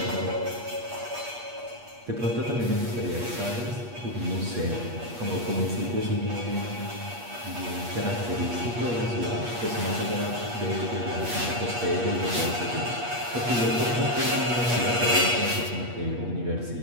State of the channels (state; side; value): late; left; 8.4 ms